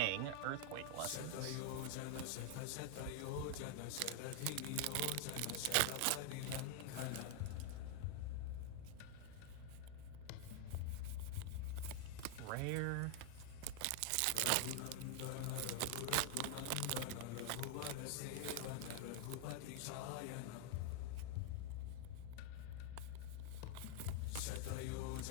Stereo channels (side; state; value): both; different; correlation 0.00